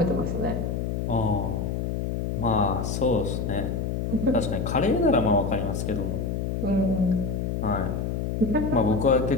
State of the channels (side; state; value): left; noise; hum, 1 dB below the sound